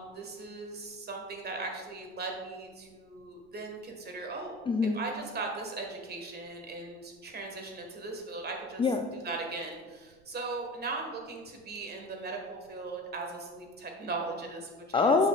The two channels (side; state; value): right; noise; rumble, 29 dB below the sound